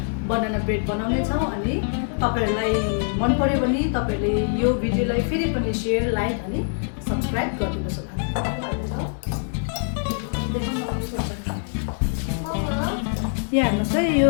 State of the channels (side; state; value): right; silent; digital silence